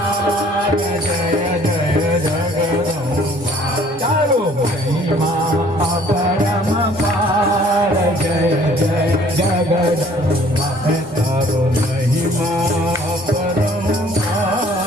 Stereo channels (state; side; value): normal; both; correlation 0.56